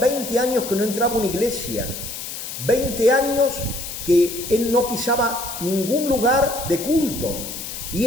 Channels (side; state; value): left; noise; hiss, 8 dB below the sound